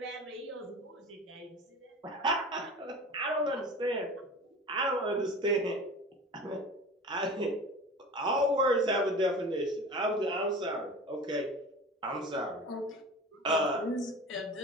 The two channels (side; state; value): both; normal; correlation 0.36